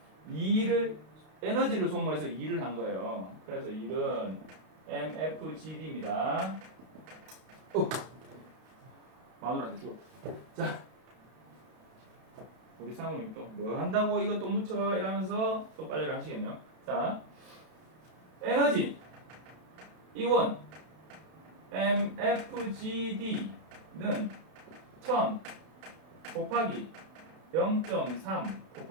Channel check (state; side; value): late; left; 32 ms